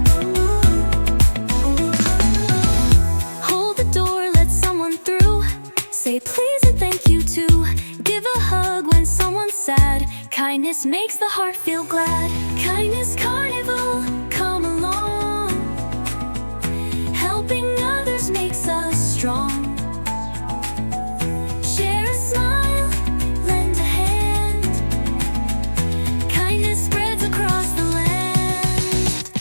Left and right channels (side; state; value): both; inverted; correlation -1.00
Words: Hold the door, let someone through. Say please and thank you too. Give a hug when someone's sad. Kindness makes the heart feel glad. Kindness Carnival, come along. Helping others makes us strong. Share a smile, lend a hand. Kindness spreads across the land.